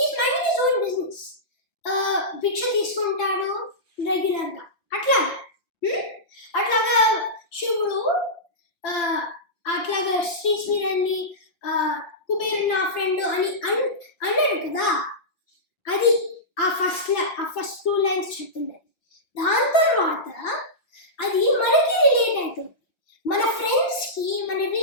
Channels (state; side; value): late; right; 5.8 ms